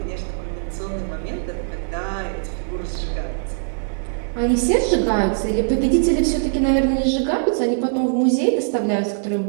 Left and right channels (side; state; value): left; silent; digital silence